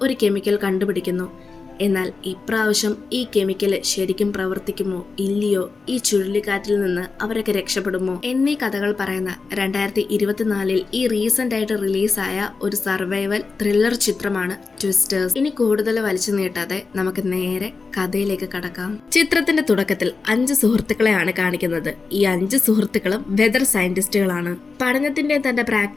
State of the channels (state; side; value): quieter; right; 4.4 dB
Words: ഒരു കെമിക്കൽ കണ്ടുപിടിക്കുന്നു. എന്നാൽ ഇപ്രാവശ്യം ഈ കെമിക്കൽ ശരിക്കും പ്രവർത്തിക്കുമോ ഇല്ലയോ, ഈ ചുഴലിക്കാറ്റിൽ നിന്ന് അവരൊക്കെ രക്ഷപ്പെടുമോ എന്നീ കഥകൾ പറയുന്ന 2024 ഈ റീസെന്റ് ആയിട്ട് റിലീസായ ഒരു സർവൈവൽ ത്രില്ലർ ചിത്രമാണ് ട്വിസ്റ്റേഴ്സ്. ഇനി കൂടുതൽ വലിച്ചു നീട്ടാതെ നമുക്ക് നേരെ കഥയിലേക്ക് കടക്കാം. ചിത്രത്തിന്റെ തുടക്കത്തിൽ 5 സുഹൃത്തുക്കളെയാണ് കാണിക്കുന്നത്. ഈ 5 സുഹൃത്തുക്കളും വെതർ സയന്റിസ്റ്റുകളാണ്. പഠനത്തിന്റെ തന്റെ